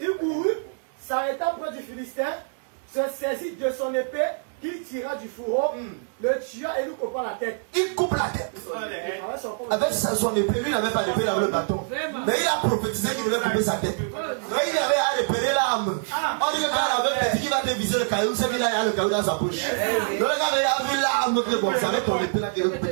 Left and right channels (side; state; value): left; silent; digital silence